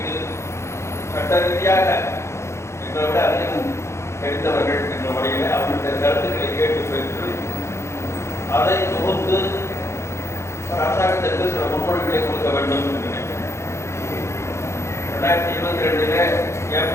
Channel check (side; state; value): right; late; 0.13 ms